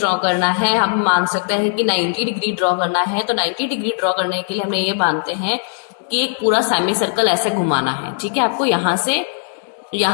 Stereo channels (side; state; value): right; silent; 62 dB below the other